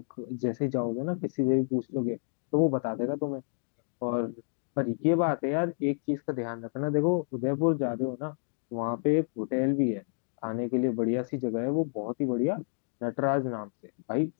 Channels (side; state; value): right; silent; digital silence